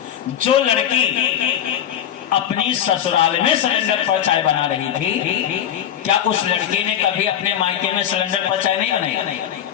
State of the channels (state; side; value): quieter; right; 10.1 dB